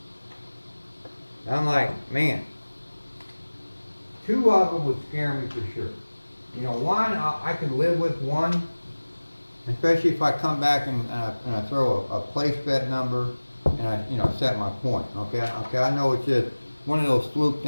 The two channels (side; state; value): both; inverted; correlation -1.00